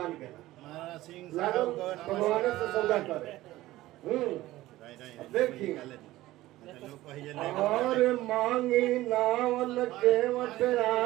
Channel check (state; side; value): quieter; left; 16.6 dB